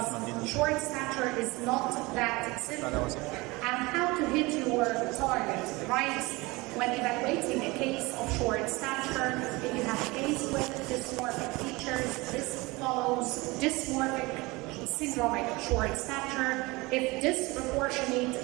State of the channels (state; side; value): quieter; left; 23.2 dB